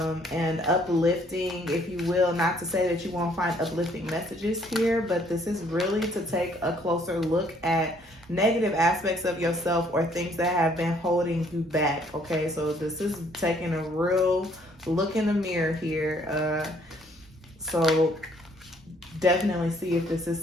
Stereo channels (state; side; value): normal; both; correlation 0.64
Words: uplifting, if you will, not to say that you won't find uplifting messages here, but this is really to take a closer look at negative aspects of yourself or things that have been holding you back. Okay, so this is taking a real look in the mirror here. So definitely see if this is